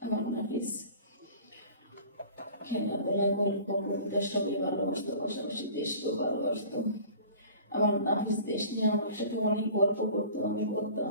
আমার নাফিস খেলাধুলা গল্প কবিতা সবই ভালোবাসতো, পাশাপাশি দেশকেও ভালোবাসতো। আমার নাফিস দেশ নিয়ে আমার সাথে অনেক গল্প করতো। আমি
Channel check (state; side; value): inverted; both; correlation -0.43